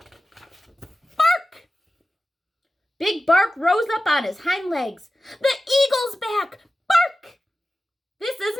Big Bark rose up on his hind legs. The eagle's back! Bark! This is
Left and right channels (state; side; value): normal; both; correlation 0.95